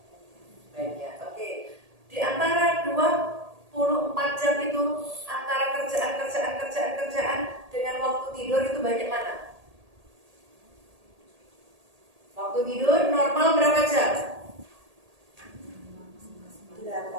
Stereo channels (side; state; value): left; late; 1.8 ms